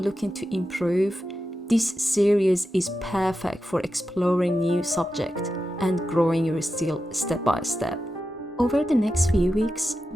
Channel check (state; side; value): normal; both; correlation 0.90